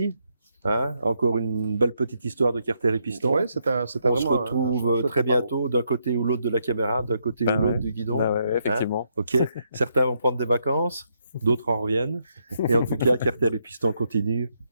Hein, encore une belle petite histoire de Carter et Piston. Ouais, c'était On vraiment se retrouve très bientôt d'un côté ou l'autre de la caméra, d'un côté ou l'autre du guidon. Effectivement. Ok. Certains vont prendre des vacances, d'autres en reviennent. Et en tout cas, Carter et Piston continuent.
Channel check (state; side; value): inverted; both; correlation -0.77